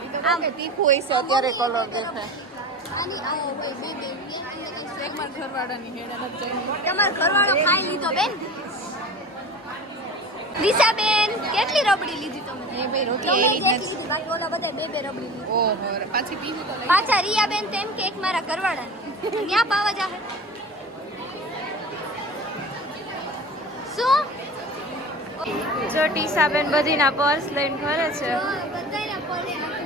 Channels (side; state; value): both; normal; correlation 0.35